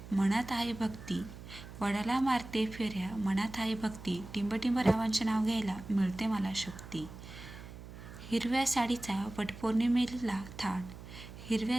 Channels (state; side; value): noise; right; hum, 14 dB below the sound